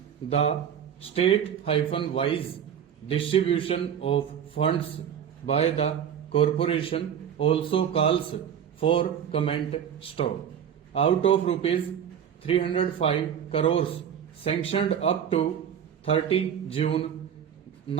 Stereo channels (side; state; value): left; quieter; 8.7 dB